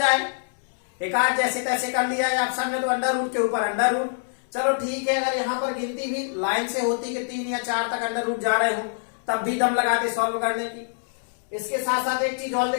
एक आध जैसे तैसे कर लिया है ऑप्शन में, तो अंडर रूट के ऊपर अंडर रूट, चलो ठीक है। अगर यहाँ पर गिनती भी लाइन से होती कि 3 या 4 तक अंडर रूट जा रहे हो तब भी दम लगाते सॉल्व करने की। इसके साथ साथ एक चीज और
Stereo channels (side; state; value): right; silent; 62 dB below the other